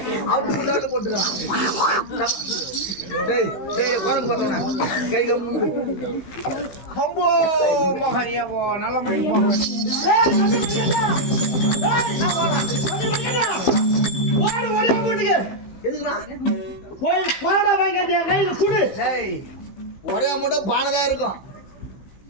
அவனுக்கு தவணை போட்டுக்கிறான் டேய் டேய் குழம்பு பார்த்தோன்னே கை கம்பு கம்போ மகனியவோ நல்ல முடிவு போக ஓடு ஓடியா வீட்டுக்கு எதுக்குண்ணா போய் பாட வாங்க கையில குடு டேய் ஒரே மூட்டை பானை தான் இருக்கும்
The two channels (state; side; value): late; right; 15 ms